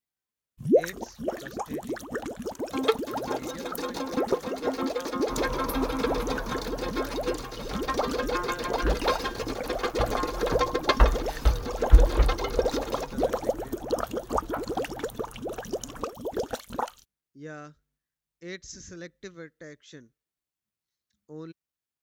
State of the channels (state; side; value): identical; both; correlation 1.00